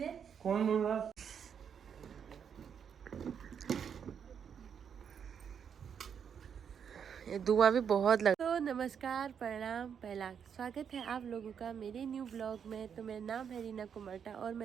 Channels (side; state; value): left; quieter; 7.5 dB